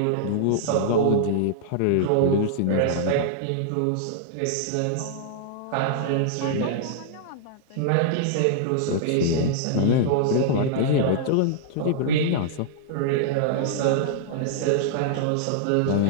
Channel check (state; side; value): different; both; correlation -0.01